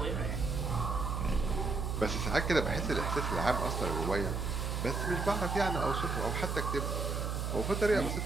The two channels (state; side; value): noise; right; hum, 1 dB below the sound